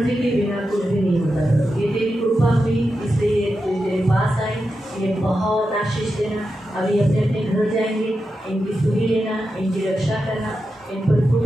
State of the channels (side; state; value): both; normal; correlation 0.89